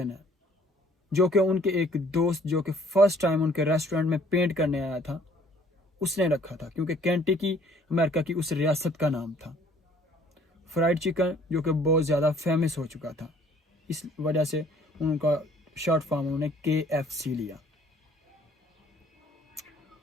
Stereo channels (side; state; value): both; normal; correlation 0.58